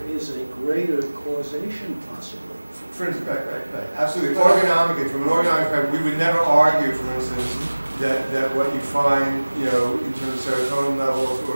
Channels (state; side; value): inverted; both; correlation -1.00